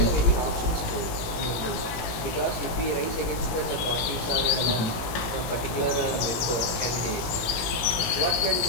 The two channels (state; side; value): late; right; 18 ms